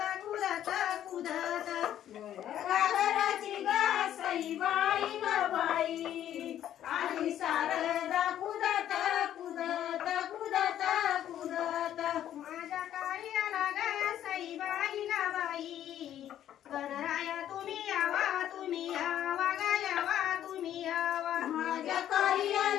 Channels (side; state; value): right; quieter; 11.2 dB